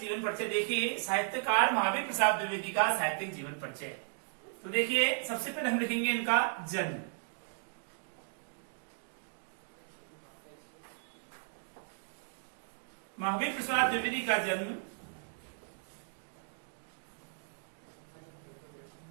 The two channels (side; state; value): left; silent; digital silence